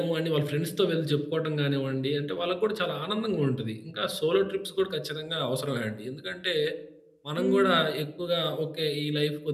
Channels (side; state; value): both; identical; correlation 1.00